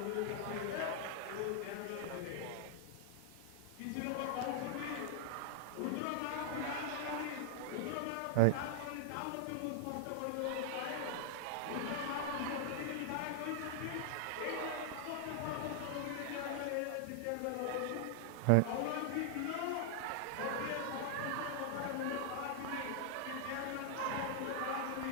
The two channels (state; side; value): different; both; correlation -0.01